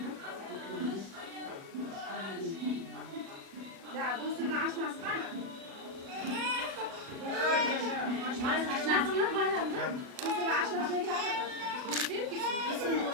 Ya dostum açmaz var mı?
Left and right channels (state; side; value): late; left; 37 ms